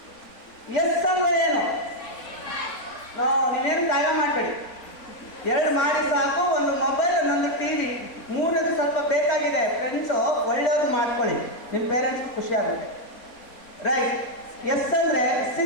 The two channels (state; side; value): late; right; 3.9 ms